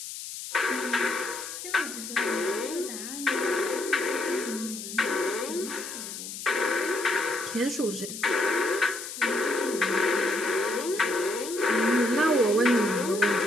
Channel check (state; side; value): noise; left; hiss, 9 dB below the sound